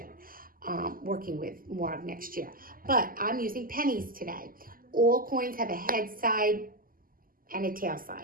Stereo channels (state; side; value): late; left; 0.41 ms